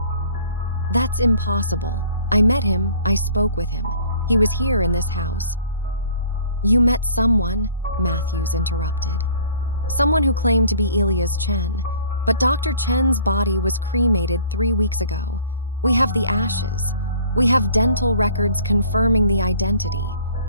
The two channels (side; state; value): both; inverted; correlation -0.53